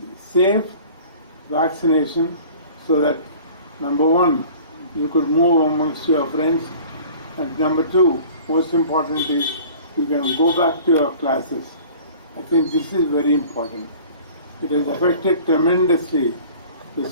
safe vaccination so that, number one, you could move amongst your friends, and number two, most importantly, you can go back to your classes. I think this is very important. It has affected tremendously the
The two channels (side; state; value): both; inverted; correlation -0.46